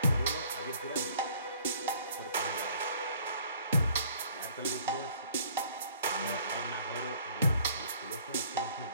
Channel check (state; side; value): inverted; both; correlation -0.57